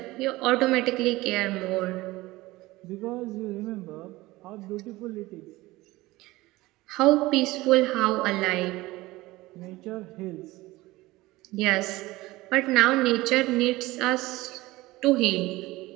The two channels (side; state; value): left; quieter; 19.4 dB